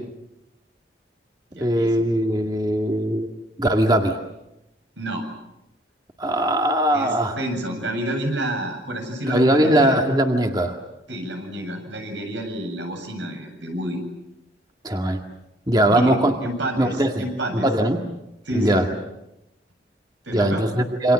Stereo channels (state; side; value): normal; both; correlation 0.61